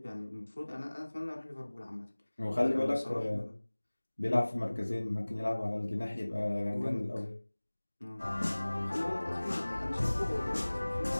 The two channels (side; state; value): both; inverted; correlation -1.00